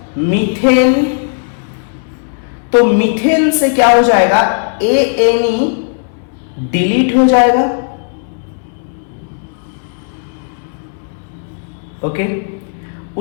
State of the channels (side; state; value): right; silent; digital silence